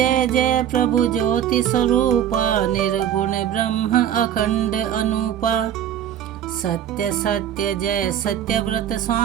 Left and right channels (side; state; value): left; quieter; 10.3 dB